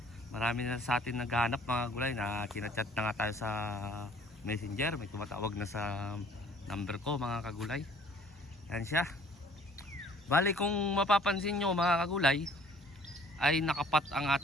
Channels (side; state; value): both; normal; correlation 0.57